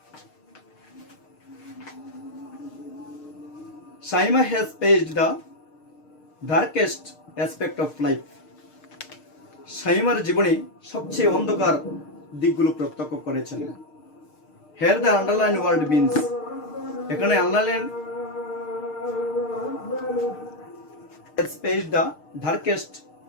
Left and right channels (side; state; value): right; late; 6.6 ms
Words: Shamima has faced the darkest aspect of life. শামীমার জীবনে সবচেয়ে অন্ধকার দিকগুলো প্রত্যক্ষ করেছেন। Here the underlined word means, এখানে underline has faced the darkest